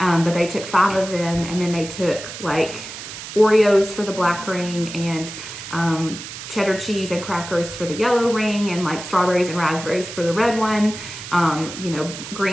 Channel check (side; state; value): right; noise; hiss, 11 dB below the sound